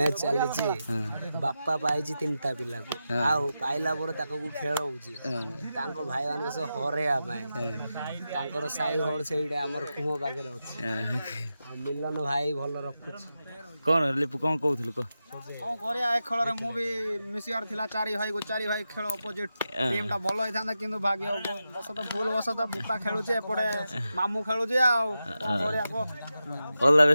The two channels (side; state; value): both; inverted; correlation -0.90